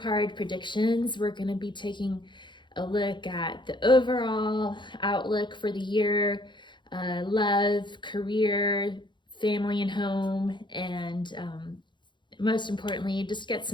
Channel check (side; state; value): right; late; 0.23 ms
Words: predictions. We're going to be taking a look at the overall outlook for the year, love, career, family and home, and most importantly, just get